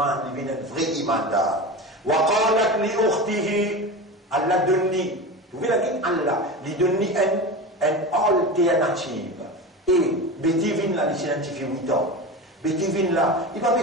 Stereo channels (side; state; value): both; normal; correlation 0.27